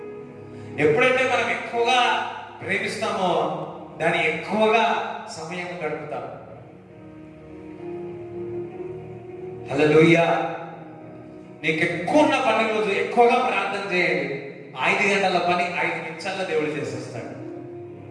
ఎప్పుడైతే మనం ఎక్కువగా ప్రేమిస్తామో దాన్ని ఎక్కువగా సమయం గడుపుతాం. హల్లెలూయా. నీకు ఎక్కువ ఉన్న పని రోజు ఎక్కువగా ప్రార్థన చేయండి. 5 గంటల పని 5 నిమిషాల్లో దేవుడు చేసేస్తాడు.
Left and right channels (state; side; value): identical; both; correlation 1.00